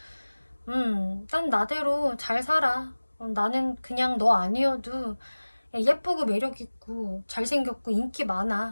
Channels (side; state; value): both; inverted; correlation -1.00